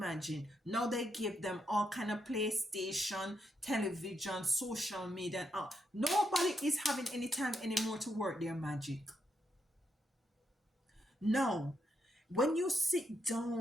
Now they give them all kind of PlayStation, television, social media, and all. Nobody is having any time anymore to work their magic. No. When you sit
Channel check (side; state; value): both; normal; correlation 0.80